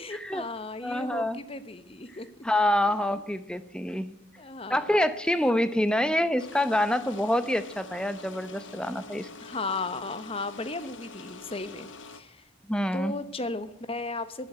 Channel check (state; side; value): normal; both; correlation 0.79